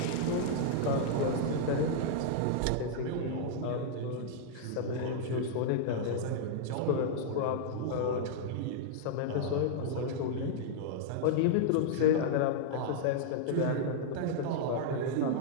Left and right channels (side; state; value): both; different; correlation -0.02